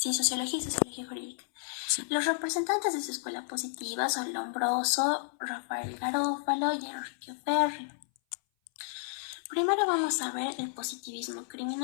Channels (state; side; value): silent; right; 57 dB below the other